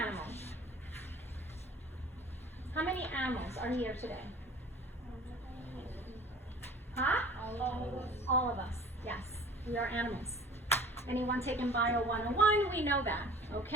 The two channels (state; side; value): normal; both; correlation 0.45